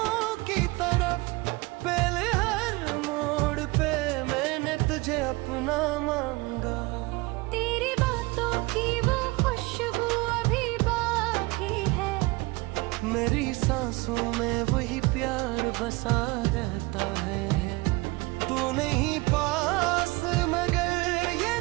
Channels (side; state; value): left; quieter; 23.3 dB